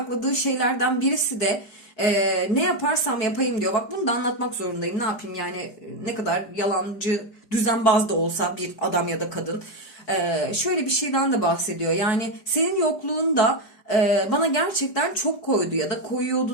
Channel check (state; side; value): late; right; 4.9 ms